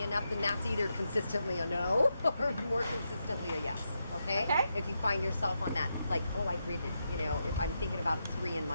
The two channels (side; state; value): both; inverted; correlation -0.84